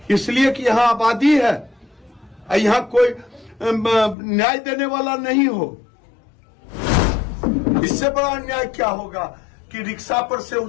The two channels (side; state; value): right; drops out; at 4.2 s